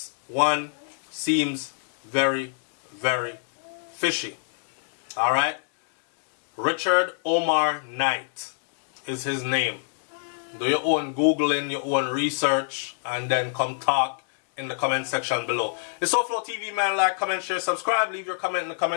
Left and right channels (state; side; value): silent; right; digital silence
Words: one seems very, very fishy. Alright? Richard Omar Knight is his name. Do your own Googling, your own research, and then come talk in the comment section below. It's SouFLoTV, man. Like, comment, share, subscribe. Leave your comment in the